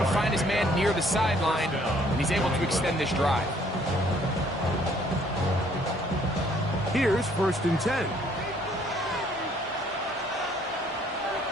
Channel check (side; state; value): both; normal; correlation 0.62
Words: find his man near the sideline, and he's able to extend this drive. Here's first and 10.